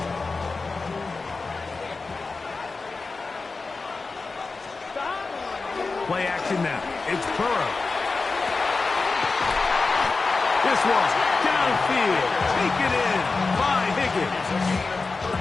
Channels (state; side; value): quieter; right; 4.0 dB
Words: Play action now. It's Burrow. This one downfield. Taken in by Higgins.